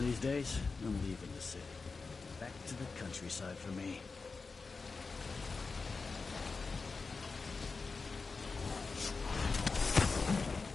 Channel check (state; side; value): quieter; right; 4.4 dB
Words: these days, I'm leaving the city. Back to the countryside for me.